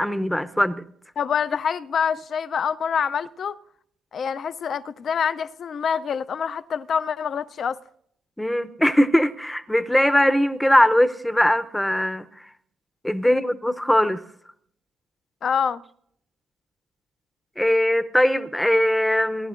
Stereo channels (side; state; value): both; normal; correlation 0.95